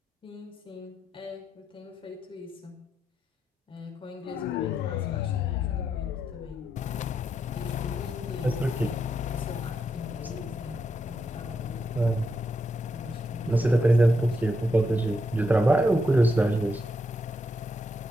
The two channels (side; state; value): both; normal; correlation 0.82